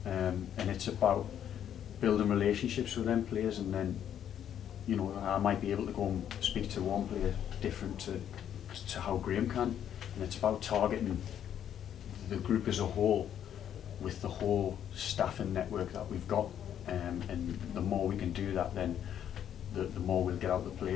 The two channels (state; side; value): quieter; right; 9.7 dB